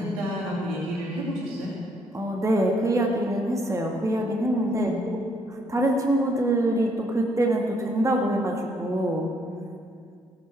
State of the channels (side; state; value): both; normal; correlation 0.69